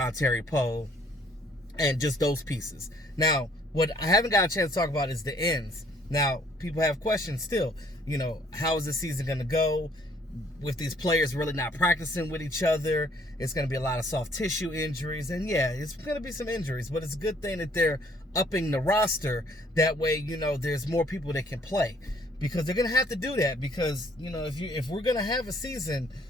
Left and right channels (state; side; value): normal; both; correlation 0.62